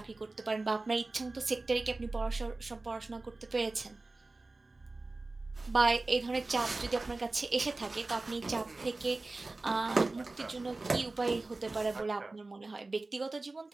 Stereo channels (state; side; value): quieter; left; 3.3 dB